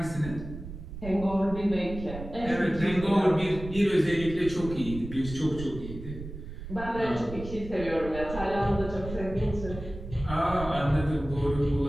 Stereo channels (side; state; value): right; noise; rumble, 11 dB below the sound